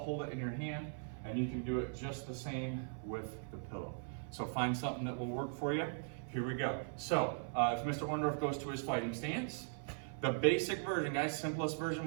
it in your hand, and you can do it just the same with the pillow. So find something that will work for you. Here we go. So if Mr. Orndorff goes to his fighting stance, the basic version, guys, simplest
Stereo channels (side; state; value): left; silent; 51 dB below the other